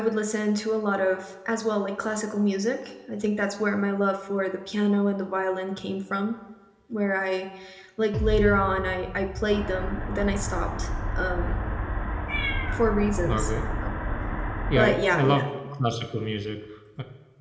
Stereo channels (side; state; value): both; identical; correlation 1.00